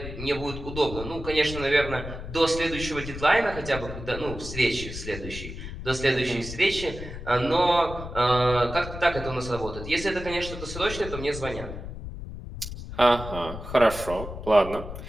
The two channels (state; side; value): noise; left; rumble, 9 dB below the sound